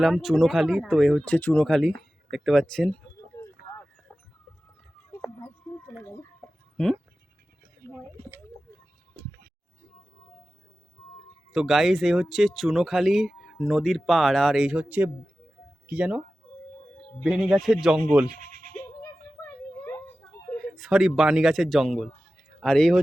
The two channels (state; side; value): normal; both; correlation 0.95